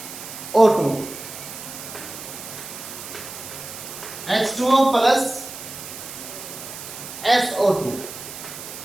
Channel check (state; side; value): noise; right; hiss, 11 dB below the sound